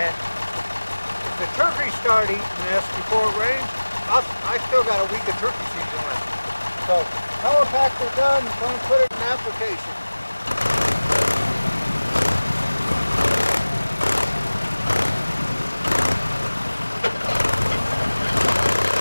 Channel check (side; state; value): both; inverted; correlation -1.00